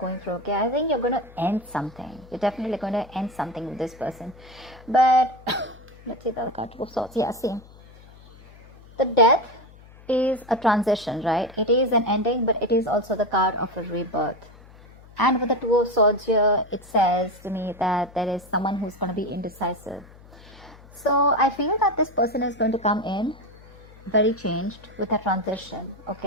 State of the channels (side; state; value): left; noise; hum, 22 dB below the sound